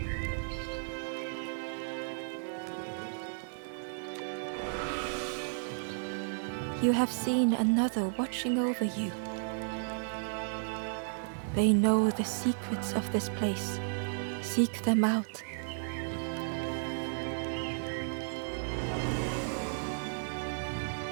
You have seen another watching over you. They know the secrets of this place. Seek them out.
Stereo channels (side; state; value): left; silent; digital silence